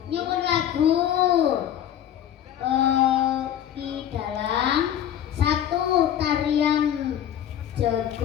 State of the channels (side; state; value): right; quieter; 10.5 dB